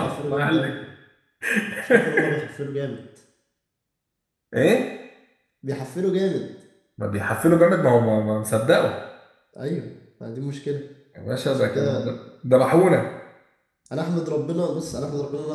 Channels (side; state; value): both; identical; correlation 1.00